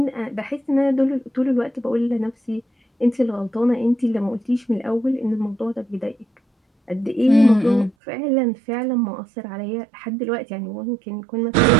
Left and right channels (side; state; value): left; drops out; at 8.0 s